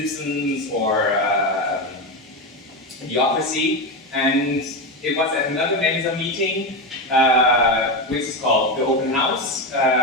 or Bureaucracy, and it was at another Mensa meeting, which is called the Open House.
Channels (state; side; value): normal; both; correlation 0.14